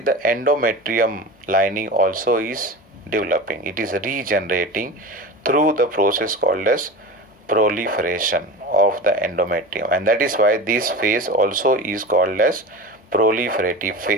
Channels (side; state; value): both; normal; correlation 0.30